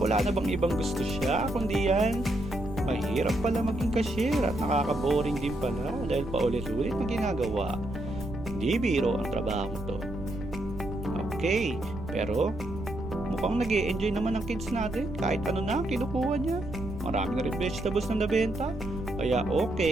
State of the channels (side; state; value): right; noise; rumble, 11 dB below the sound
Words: na bang ibang gusto siya kundi yan. Mahirap pala maging cashier at nakaka-boring din pala dahil paulit-ulit na ginagawa. Hindi biro ang trabaho to. Okay, pero mukhang nag-i-enjoy naman ang kids natin kahit ano na kinukuha niya. Marami na rin vegetables na nabenta. Kaya